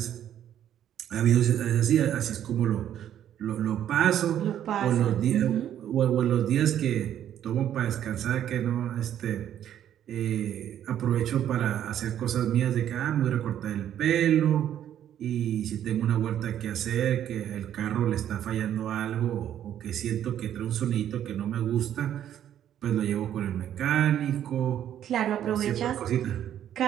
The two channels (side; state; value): left; quieter; 10.6 dB